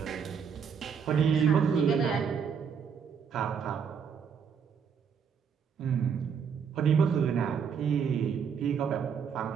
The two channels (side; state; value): left; quieter; 6.8 dB